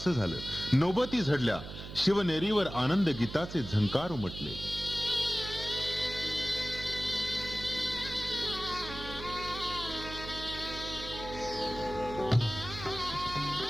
झालं. नौबती झडल्या. शिवनेरीवर आनंद गीताचे झंकार उमटले.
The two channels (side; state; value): right; noise; hum, 11 dB below the sound